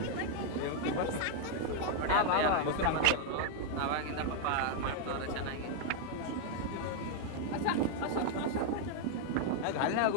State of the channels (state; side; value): different; both; correlation 0.00